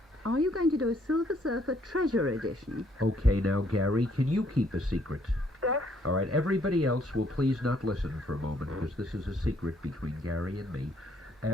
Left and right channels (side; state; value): both; normal; correlation 0.67